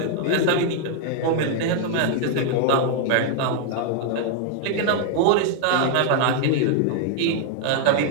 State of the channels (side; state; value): both; different; correlation 0.00